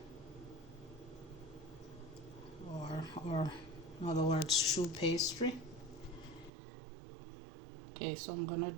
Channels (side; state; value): left; drops out; at 6.5 s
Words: or in other words, choux pastry. Okay, so I'm gonna